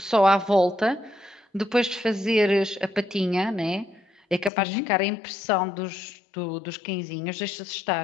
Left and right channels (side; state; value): right; drops out; at 4.5 s